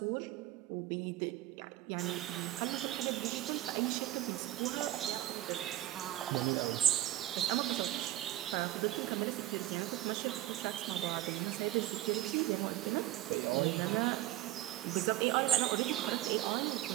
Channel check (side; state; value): left; quieter; 14.5 dB